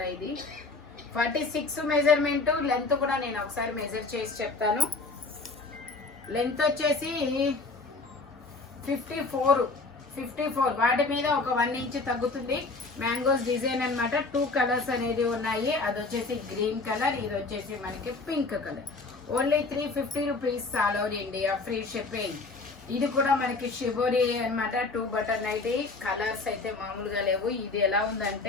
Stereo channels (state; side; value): quieter; right; 3.7 dB